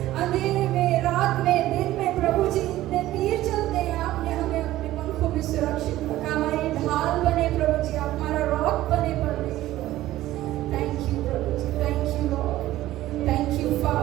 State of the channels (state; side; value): quieter; left; 15.2 dB